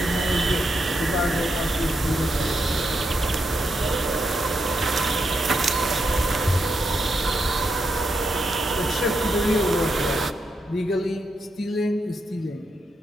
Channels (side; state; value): both; normal; correlation 0.83